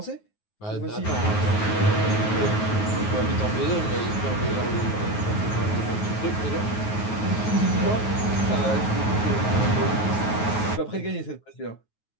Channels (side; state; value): right; late; 9.4 ms